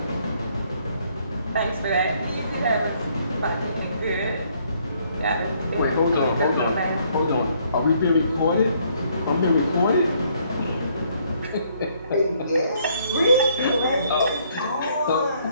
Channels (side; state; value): both; inverted; correlation -0.67